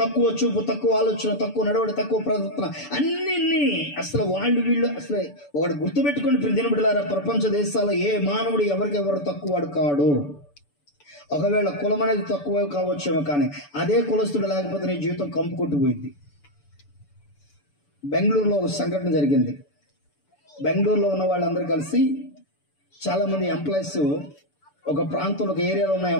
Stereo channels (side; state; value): right; late; 6.9 ms